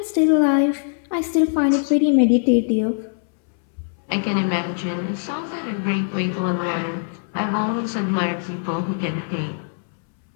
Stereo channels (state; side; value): silent; right; 64 dB below the other